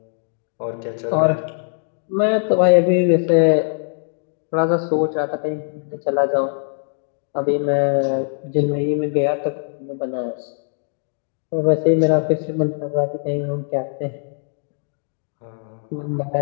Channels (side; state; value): right; silent; digital silence